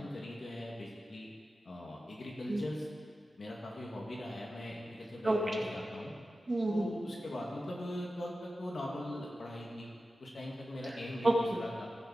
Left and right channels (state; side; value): normal; both; correlation 0.93